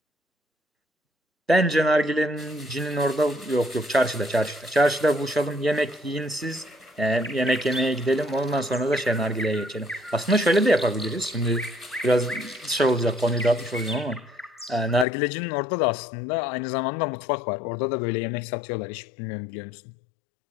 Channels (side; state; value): right; drops out; at 15.1 s